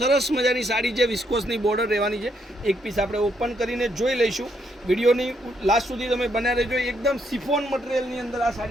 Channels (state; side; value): normal; both; correlation 0.75